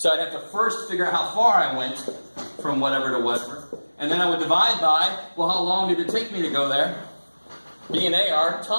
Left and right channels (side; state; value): both; inverted; correlation -1.00